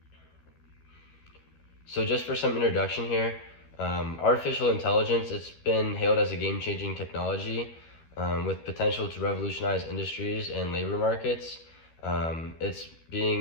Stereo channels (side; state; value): right; late; 13 ms